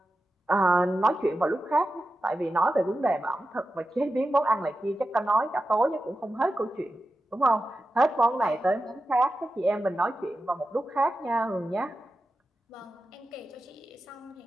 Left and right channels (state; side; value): normal; both; correlation 0.91